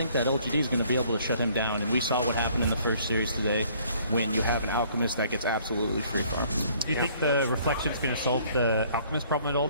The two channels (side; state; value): both; inverted; correlation -0.59